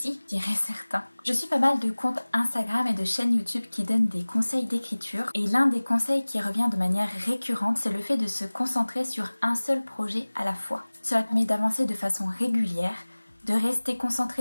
diraient certains. Je suis pas mal de comptes Instagram et de chaînes YouTube qui donnent des conseils d'écriture et l'un des conseils qui revient de manière récurrente c'est le fait de se concentrer sur un seul projet à la fois. Cela permet d'avancer de façon régulière, de rester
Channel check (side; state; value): both; inverted; correlation -1.00